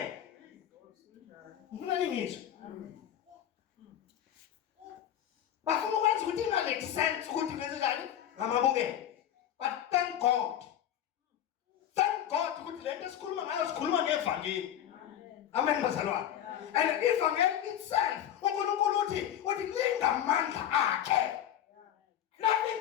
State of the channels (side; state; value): right; quieter; 10.6 dB